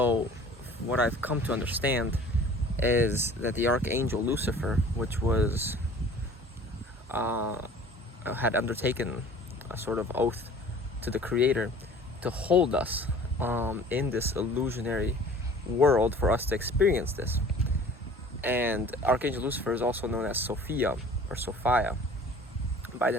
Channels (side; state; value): both; normal; correlation 0.47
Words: what I've come to understand is that the archangel Lucifer, which was had undertaken a sort of oath to the creator to hold us in this illusionary world for us to experience this. And Archangel Lucifer is also known as Sophia or Sophia by